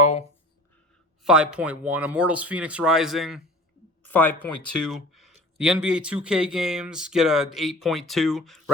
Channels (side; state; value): both; normal; correlation 0.42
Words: 5.1. Immortals Phoenix Rising, 5.2. The NBA 2K games get a 8.2.